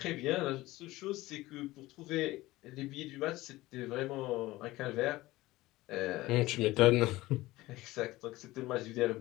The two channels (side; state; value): right; quieter; 18.4 dB